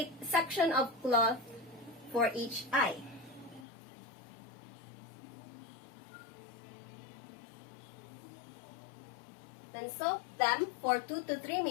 section of cloth for each eye. Then soak them for 2 to 3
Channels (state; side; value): drops out; right; at 3.7 s